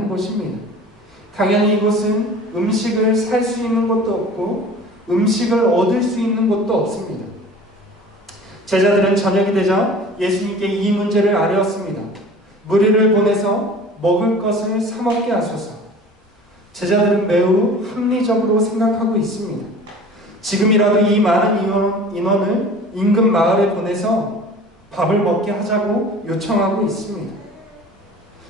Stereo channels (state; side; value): normal; both; correlation 0.43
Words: 곳입니다. 당연히 이곳은 음식을 살 수 있는 곳도 없고 음식을 얻을 수 있는 곳도 없습니다. 제자들은 저녁이 되자 예수님께 이 문제를 아뢰었습니다. 무리를 보내서 먹을 것을 사 먹게 하소서. 제자들은 매우 합리적으로 생각하고 있습니다. 지금이라도 이 많은 인원을 인근 마을에 보내서 밥을 먹게 하자고 요청하고 있습니다.